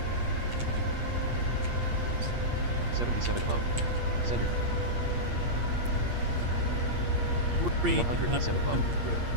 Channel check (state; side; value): late; left; 8.5 ms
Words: 77 above. Center. 107 above.